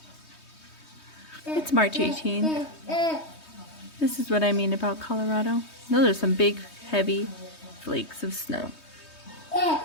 It's March 18th. This is what I mean about Colorado. Those are some big, heavy flakes of snow.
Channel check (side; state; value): right; late; 3.2 ms